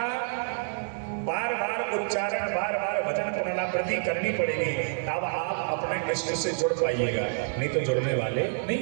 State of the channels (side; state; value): left; silent; digital silence